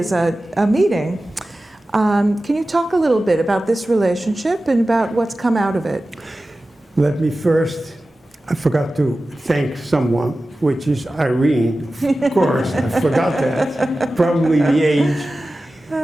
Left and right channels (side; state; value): both; normal; correlation 0.95